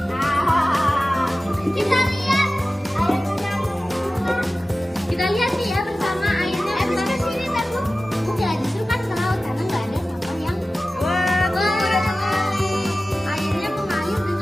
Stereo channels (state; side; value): normal; both; correlation 0.96